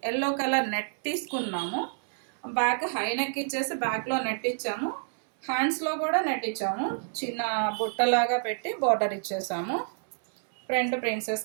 ఎల్లో కలర్ నెట్ తీసుకున్నాము. బ్యాక్ హై నెక్ ఇచ్చేసి బ్యాక్లో నెట్ ఇచ్చాము, హ్యాండ్స్లో కూడా నెట్ ఇచ్చాము, చిన్న బుట్టలాగా పెట్టి బార్డర్ ఇచ్చేసాము. ఫ్రంట్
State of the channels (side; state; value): left; silent; 59 dB below the other